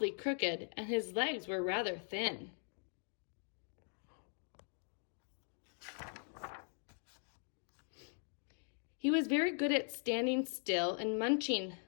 crooked and his legs were rather thin. He was very good at standing still and munching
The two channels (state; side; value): silent; right; 51 dB below the other